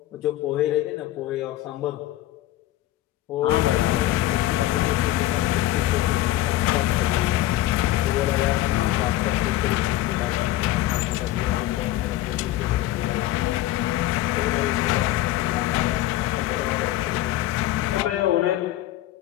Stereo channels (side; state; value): right; quieter; 14.7 dB